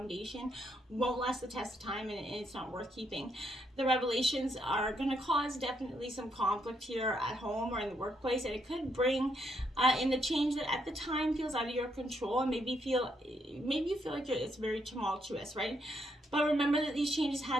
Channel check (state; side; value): normal; both; correlation 0.76